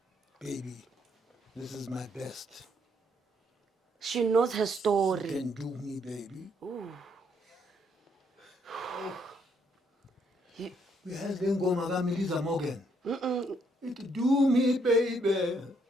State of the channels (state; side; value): normal; both; correlation 0.72